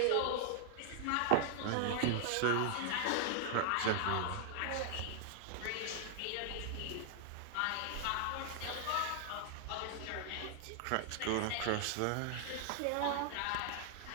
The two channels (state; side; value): different; both; correlation 0.00